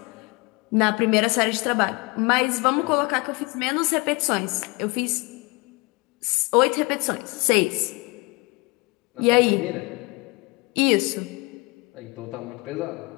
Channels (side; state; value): right; quieter; 26.8 dB